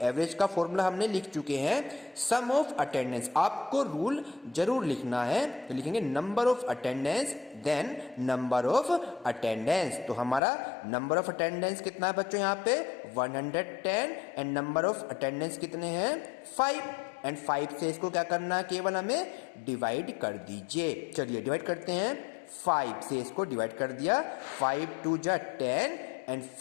का फॉर्मूला हमने लिख चुके हैं सम ऑफ अटेंडेंस। आपको रूल जरूर लिखना है। तो लिखेंगे number of attendance then number of attendance. तो हमारा नंबर ऑफ अटेंडेंस कितना है बच्चों यहाँ पे 110 एंड नंबर ऑफ अटेंडेंस कितने हैं 5 एंड 5 से इसको क्या करना है, केवल हमें डिवाइड कर दीजिए। चलिए डिवाइड करते हैं। 5 से इसको डिवाइड कर दिया। 5 2 जा 10 एंड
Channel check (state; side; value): drops out; right; at 10.4 s